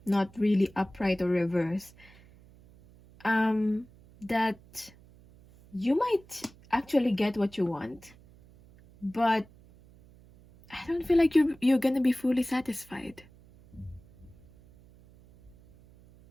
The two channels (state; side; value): noise; right; hum, 25 dB below the sound